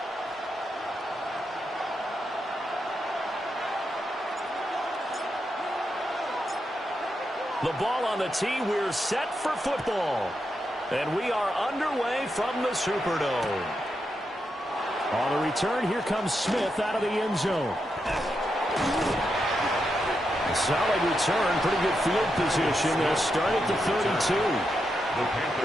The ball on the tee, we're set for football. And we are underway from the Superdome. On the return, here comes Smith out of the end zone. Solid return, pretty good field position. They'll start at the 32. The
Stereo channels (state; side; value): normal; both; correlation 0.84